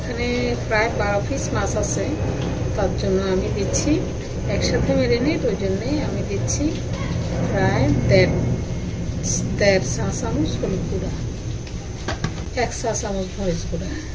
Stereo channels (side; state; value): both; identical; correlation 1.00